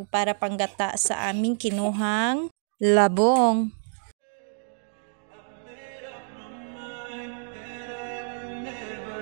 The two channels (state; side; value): silent; left; 59 dB below the other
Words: para panggata sa aming kinuhang labong.